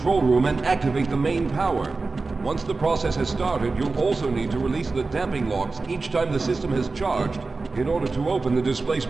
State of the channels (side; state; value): left; quieter; 3.8 dB